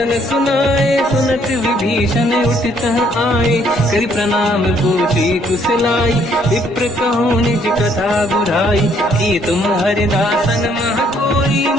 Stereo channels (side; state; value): both; normal; correlation 0.66